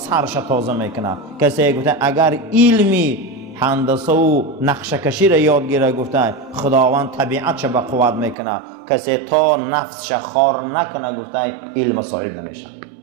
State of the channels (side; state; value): left; drops out; at 8.3 s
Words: تازه میکنه. کسی گفته اگر علمی هندسه و نقشه کشی را یاد گیره گفته خداوند طبیعتش به قوت میکنه. کسی تا نفسش خار نکنه گفته علم صاحب نمیشه.